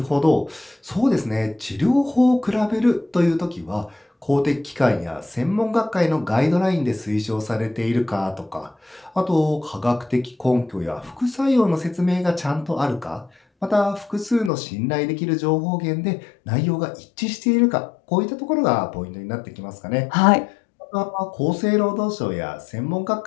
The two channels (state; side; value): drops out; right; at 14.5 s